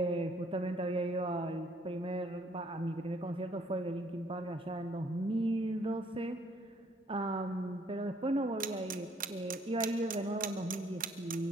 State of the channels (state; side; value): normal; both; correlation 0.64